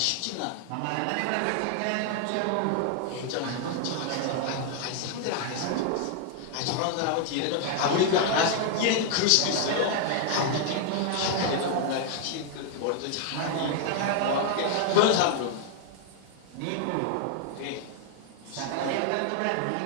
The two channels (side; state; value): both; different; correlation 0.00